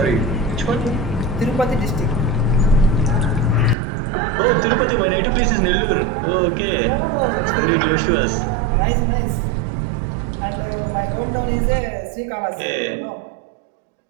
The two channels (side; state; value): left; drops out; at 3.8 s